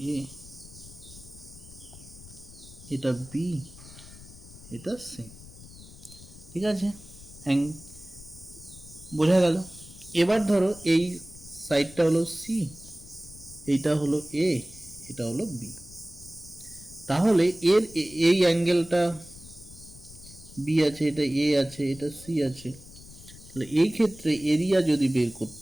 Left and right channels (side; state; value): left; noise; rumble, 18 dB below the sound